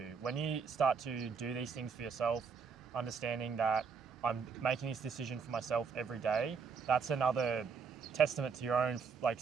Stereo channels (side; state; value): left; quieter; 5.8 dB